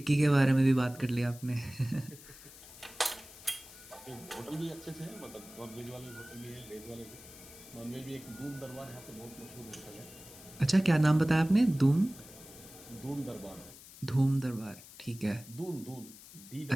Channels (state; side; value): noise; left; hiss, 18 dB below the sound